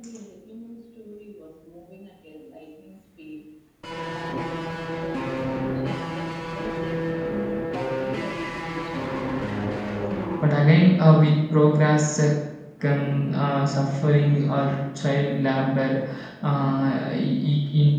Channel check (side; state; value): both; identical; correlation 1.00